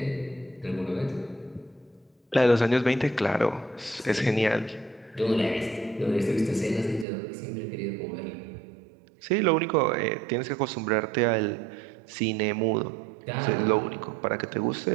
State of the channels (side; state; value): left; drops out; at 7.1 s